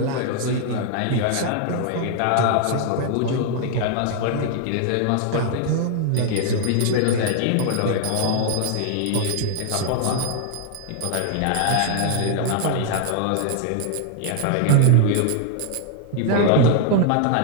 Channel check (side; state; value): both; different; correlation 0.00